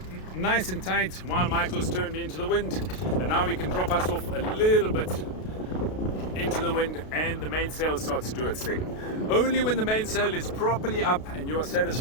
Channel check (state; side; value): late; right; 32 ms